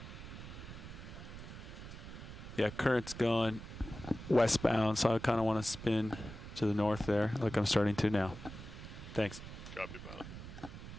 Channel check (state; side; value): noise; right; rumble, 12 dB below the sound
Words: Yeah, current's going westbound, so I kind of want to spin to the north there, like I'm starting to now. Thanks. Copy, pilot.